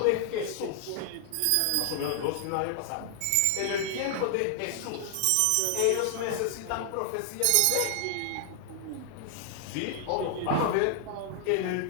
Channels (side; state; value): both; different; correlation 0.00